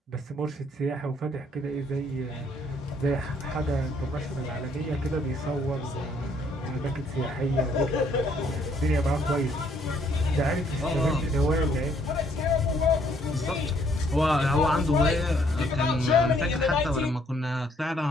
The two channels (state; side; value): normal; both; correlation 0.66